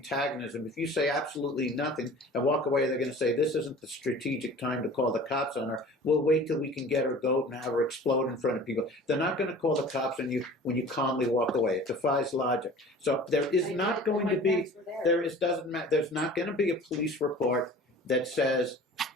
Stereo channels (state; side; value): normal; both; correlation 0.43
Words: If you say absolutely nothing and walk away, they're going to say, this isn't the strategic time to call the cops on her. We'll wait till we can get her goat and have her explode in front of people. They're not going to call the cops on you when you calmly walk away. It defies logic. So there is not going to be, there's not going to be a police report that says